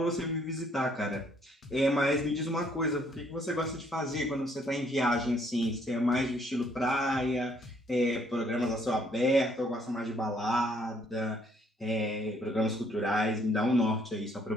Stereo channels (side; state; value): both; normal; correlation 0.66